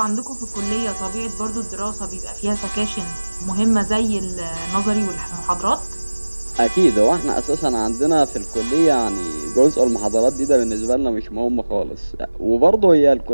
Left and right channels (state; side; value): inverted; both; correlation -1.00